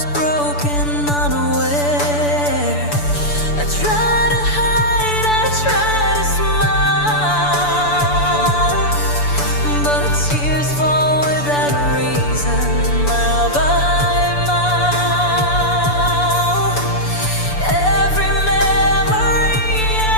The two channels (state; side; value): late; right; 6.9 ms